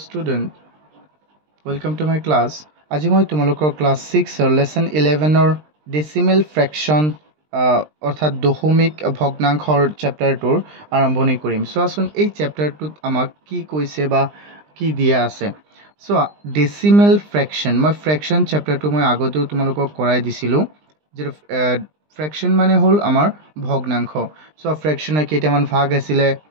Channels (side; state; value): left; late; 20 ms